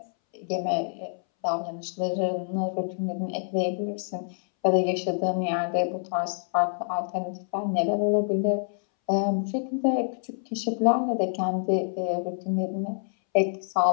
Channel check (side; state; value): right; silent; 60 dB below the other